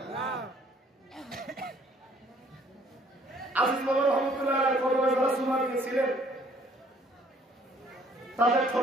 আজিজ বাবা রহমতুল্লাহ কদমে যারা সুমা দিয়েছিলেন তাদের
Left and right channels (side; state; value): both; normal; correlation 0.60